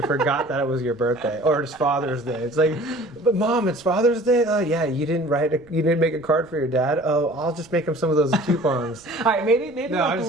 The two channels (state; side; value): noise; right; rumble, 27 dB below the sound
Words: forgot that it was your birthday or it's Father's Day. It's like, but Mom, it's Father's Day? Oh yeah, you didn't make a card for your dad? Oh, I'll just make him some of those coupons. All right, maybe a